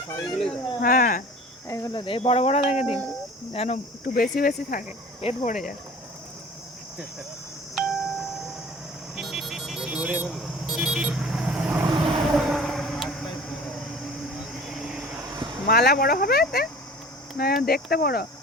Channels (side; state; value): both; normal; correlation 0.44